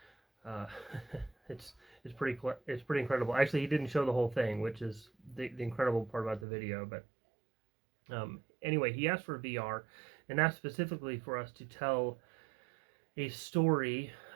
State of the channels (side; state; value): left; drops out; at 6.5 s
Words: uh, it's it's pretty incredible. Actually, he didn't show the whole thing, which is the incredible part about the video. But anyway, he asked for VR, and asked specifically for us to tell a story